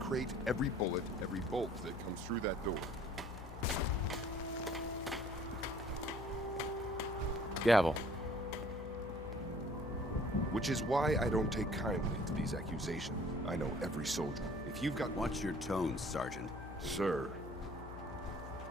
every bullet, every bolt that comes through that door. Gavel. Which is why I don't take kindly to these accusations. I know every soldier. If you've got... Watch your tone, Sergeant. Sir.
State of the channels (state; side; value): noise; left; hum, 11 dB below the sound